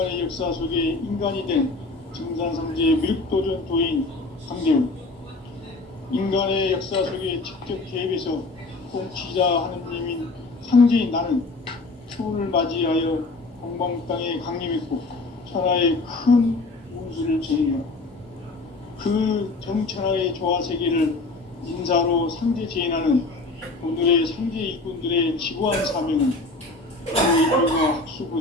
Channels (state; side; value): quieter; right; 3.3 dB